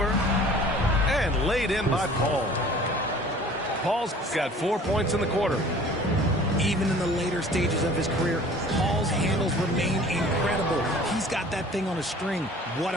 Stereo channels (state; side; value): normal; both; correlation 0.48